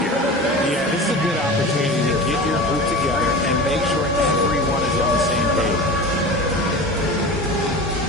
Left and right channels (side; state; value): both; normal; correlation 0.33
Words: Yeah, this is a good opportunity to get your group together and make sure everyone is on the same page.